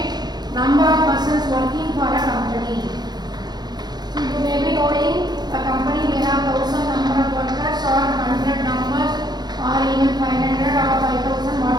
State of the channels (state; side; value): late; left; 0.20 ms